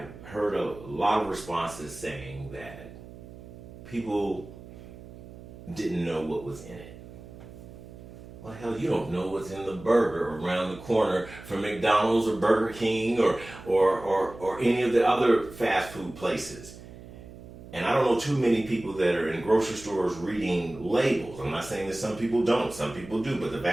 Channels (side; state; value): right; noise; hum, 16 dB below the sound